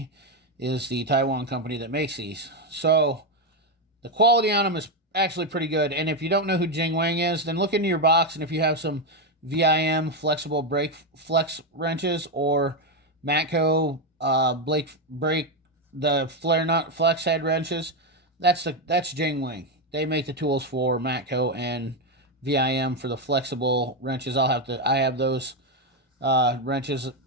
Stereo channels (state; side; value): normal; both; correlation 0.07